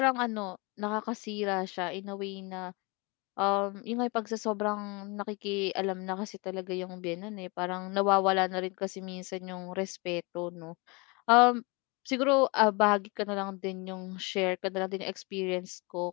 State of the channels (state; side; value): quieter; right; 28.5 dB